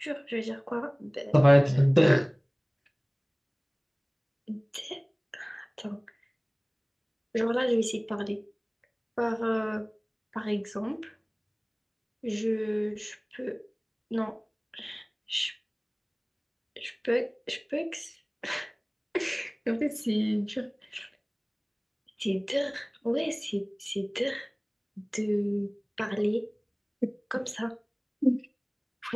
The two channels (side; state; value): both; identical; correlation 1.00